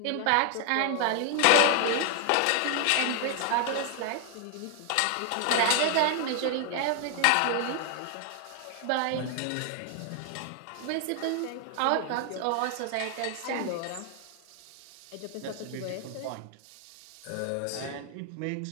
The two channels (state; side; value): different; both; correlation 0.00